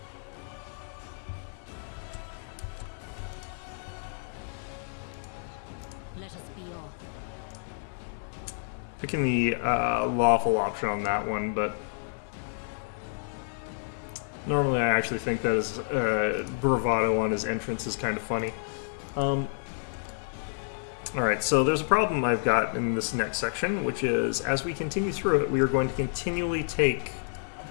Let us be off. Picking the lawful option on that one, but normally I actually think that his bravado on his entrance is kind of funny. Alright, so there's a problem I've got in this next section, which is as we continue through it, we are going to continually take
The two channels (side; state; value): right; silent; digital silence